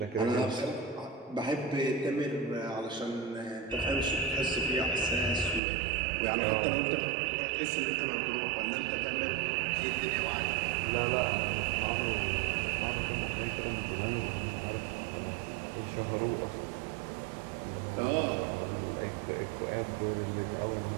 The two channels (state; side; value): drops out; left; at 5.6 s